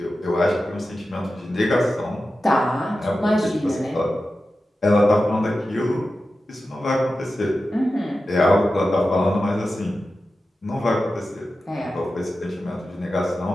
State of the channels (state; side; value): normal; both; correlation 0.93